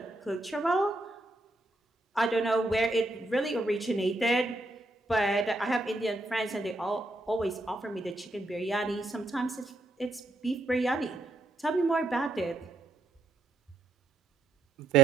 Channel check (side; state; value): left; quieter; 3.1 dB